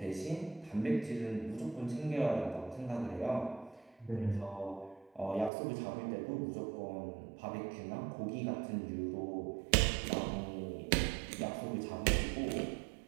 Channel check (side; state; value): left; drops out; at 5.5 s